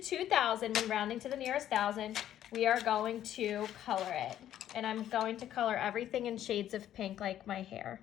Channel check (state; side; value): quieter; right; 11.5 dB